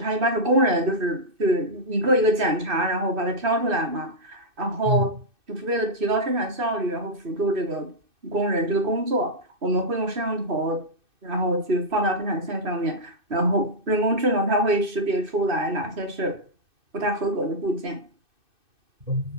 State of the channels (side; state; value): left; late; 2.6 ms